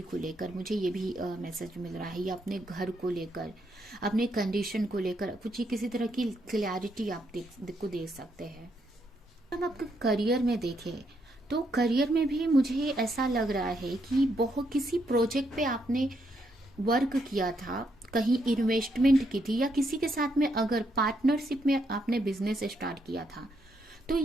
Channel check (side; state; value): both; normal; correlation 0.77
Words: को लेकर, मुझे ये भी मैसेज मिल रहा है, या अपने घर को लेकर, अपने कंडीशन को लेकर कुछ ही किसी तरह की क्लैरिटी आप को दे सकते हैं। हम आपके करियर में देखें, तो करियर में भी मुझे ऐसा लग रहा है कि बहुत किसी प्रोजेक्ट पे आपने वर्क किया था, कहीं इन्वेस्टमेंट की थी, या किसी के साथ में अगर पार्टनरशिप में आपने बिजनेस स्टार्ट किया था, तो